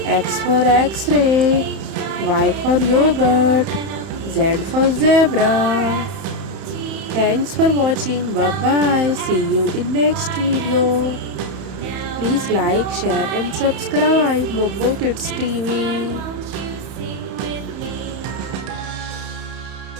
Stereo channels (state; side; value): late; left; 31 ms